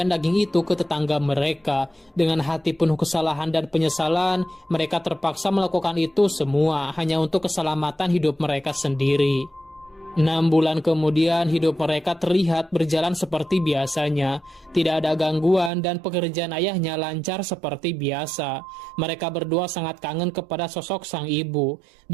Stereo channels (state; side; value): drops out; left; at 15.7 s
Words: daging itu ke tetangga mereka. Dengan hati penuh kesalahan dan penyesalan, mereka terpaksa melakukan itu semua hanya untuk keselamatan hidup mereka sendiri. 6 bulan kemudian hidup mereka terlihat berjalan seperti biasanya. Tidak ada gangguan dan pekerjaan ayahnya lancar seperti biasa. Mereka berdua sangat kangen kepada sosok sang ibu.